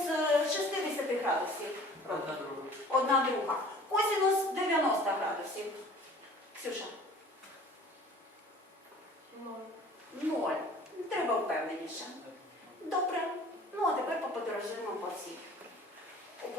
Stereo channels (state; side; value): normal; both; correlation 0.48